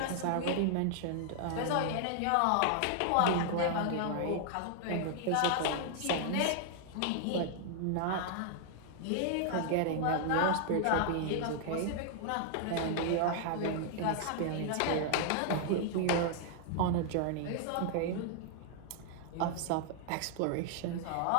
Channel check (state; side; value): different; both; correlation 0.00